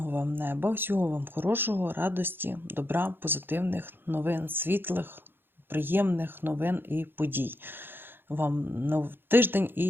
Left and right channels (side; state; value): left; late; 0.10 ms